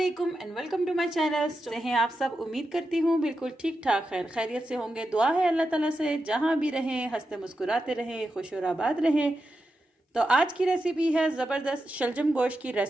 and welcome to my channel. कैसे हैं आप सब? उम्मीद करती हूँ बिल्कुल ठीक ठाक खैरियत से होंगे। दुआ है अल्लाह ताला से जहाँ भी रहें हंसते मुस्कुराते रहें, खुश और आबाद रहें। तो आज की रेसिपी है ज़बरदस्त शलजम गोश्त की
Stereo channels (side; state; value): both; normal; correlation 0.89